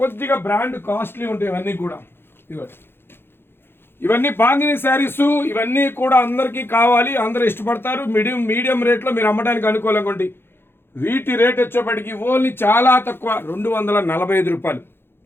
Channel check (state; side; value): late; right; 0.11 ms